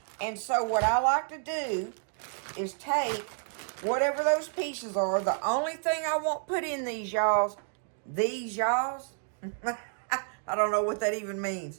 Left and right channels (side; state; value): left; silent; digital silence